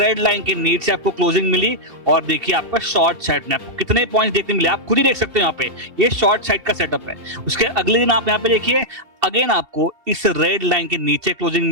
लाइन के नीचे आपको क्लोजिंग मिली और देखिए आपका शॉर्ट साइड में आपको कितने पॉइंट्स देखने मिले, आप खुद ही देख सकते हो। यहाँ पे ये शॉर्ट साइड का सेटअप है। उसके अगले दिन आप यहाँ पे देखिए अगेन आपको इस रेड लाइन के नीचे क्लोजिंग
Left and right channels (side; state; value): left; late; 2.7 ms